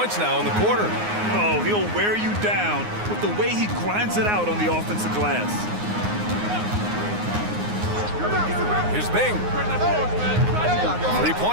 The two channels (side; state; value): left; late; 9.6 ms